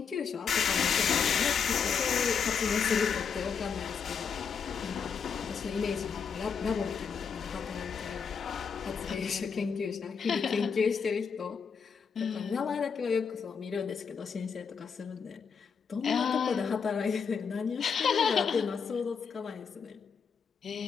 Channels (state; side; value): quieter; right; 6.3 dB